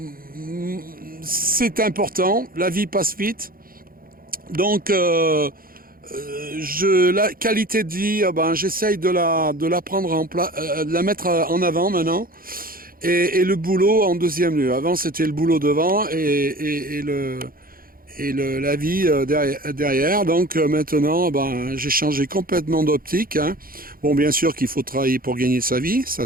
c'est important, la vie passe vite. Donc la qualité de vie, j'essaye de la prendre de la mettre en avant maintenant. Et le boulot en deuxième lieu. Avant, c'était le boulot devant et la vie derrière. Donc maintenant, j'ai changé complètement d'optique. Hein. Bon, bien sûr qu'il faut travailler pour gagner sa vie,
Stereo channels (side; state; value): left; late; 0.42 ms